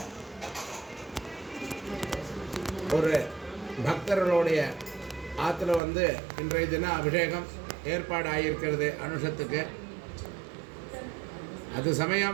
ஒரு பக்தர்களுடைய ஆற்றுல இன்றைய தினம் அபிஷேகம் ஏற்பாடு ஆகியிருக்கிறது. அனுஷத்துக்கு அது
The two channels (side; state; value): left; drops out; at 5.8 s